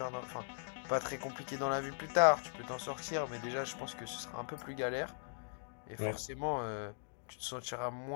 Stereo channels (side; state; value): right; silent; digital silence